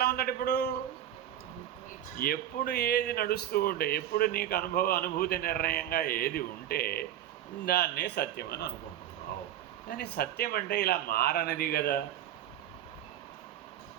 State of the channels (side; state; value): left; quieter; 11.5 dB